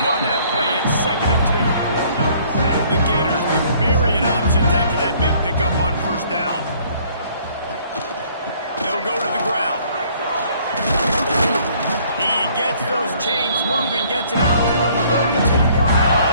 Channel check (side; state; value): both; inverted; correlation -0.60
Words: on that play. It's 2nd and 2. The Gators with myriad options after that big pickup on 1st down. They'll go to the ground. He gets those chains moving, gets it out to the 42-yard